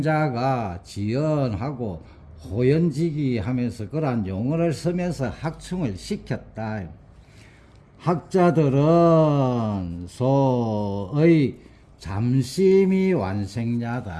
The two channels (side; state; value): both; identical; correlation 1.00